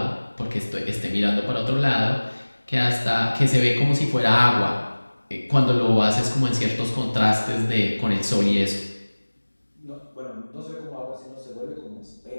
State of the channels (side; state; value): both; inverted; correlation -1.00